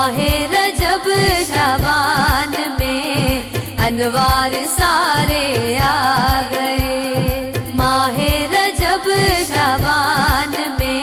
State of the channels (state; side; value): identical; both; correlation 1.00